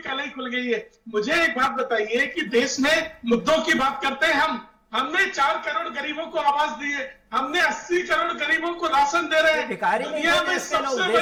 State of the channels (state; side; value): identical; both; correlation 1.00